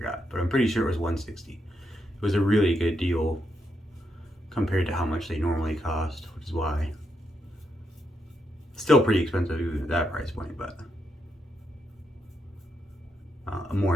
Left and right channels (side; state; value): both; normal; correlation 0.81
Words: but I'm pretty sure it was 160. It was a really good deal compared to how much they normally cost, which is why. Still pretty expensive even at that price point, but more